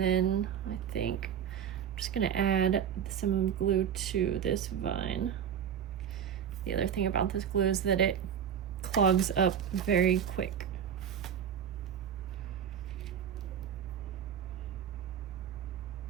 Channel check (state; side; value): quieter; left; 8.5 dB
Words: I think I'm just gonna add some glue to this vine. The other thing about this glue is that it clogs up very quick.